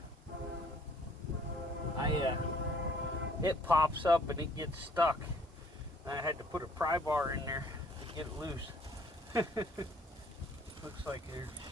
It pops up and it gets stuck. I had to put a pry bar in there to get it loose. Looks like there's,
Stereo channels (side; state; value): both; normal; correlation 0.59